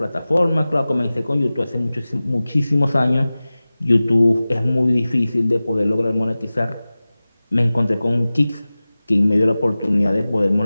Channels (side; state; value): both; inverted; correlation -0.97